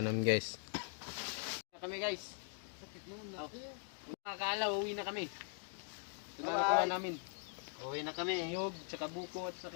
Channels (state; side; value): silent; right; 50 dB below the other